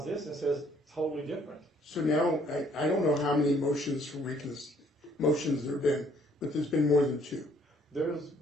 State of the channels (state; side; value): normal; both; correlation 0.63